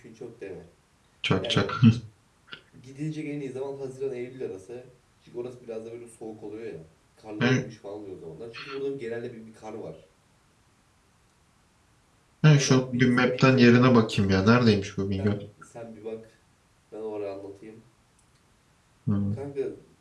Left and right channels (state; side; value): identical; both; correlation 1.00